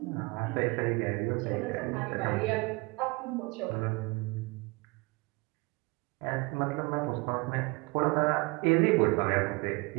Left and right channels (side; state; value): left; quieter; 26.4 dB